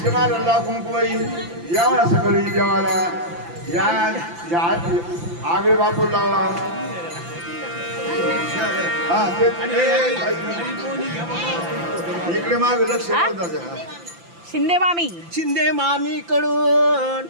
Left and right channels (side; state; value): left; late; 5.9 ms